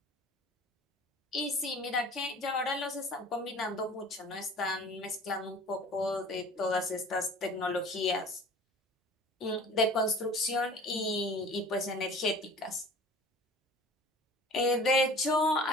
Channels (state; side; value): normal; both; correlation 0.44